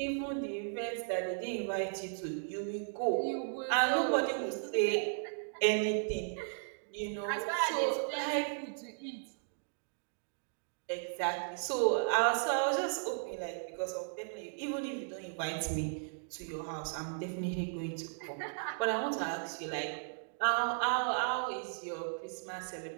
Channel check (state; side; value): silent; left; digital silence